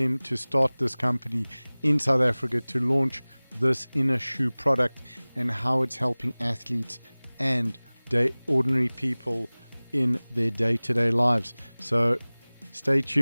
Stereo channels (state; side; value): inverted; both; correlation -1.00